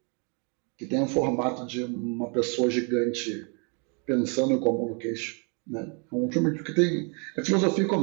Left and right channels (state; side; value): quieter; left; 36.1 dB